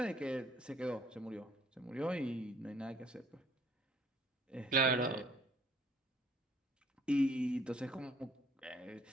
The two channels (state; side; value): normal; both; correlation 0.60